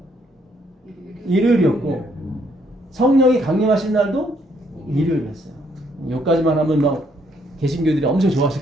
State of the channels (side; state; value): both; normal; correlation 0.70